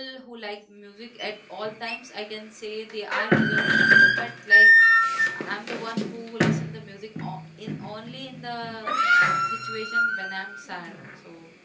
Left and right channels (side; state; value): both; identical; correlation 1.00